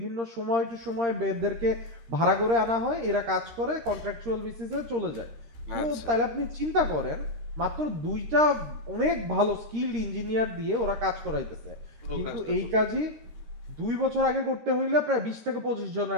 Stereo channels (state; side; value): late; left; 13 ms